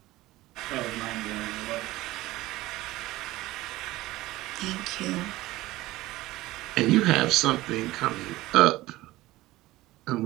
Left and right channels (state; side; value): quieter; left; 18.0 dB